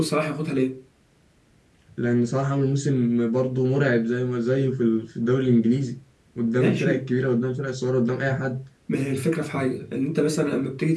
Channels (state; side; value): identical; both; correlation 1.00